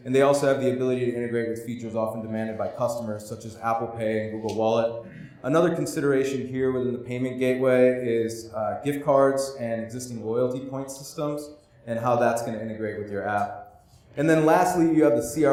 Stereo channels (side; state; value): both; identical; correlation 1.00